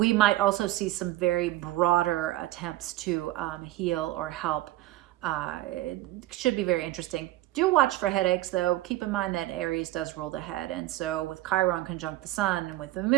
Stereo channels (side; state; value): left; quieter; 16.1 dB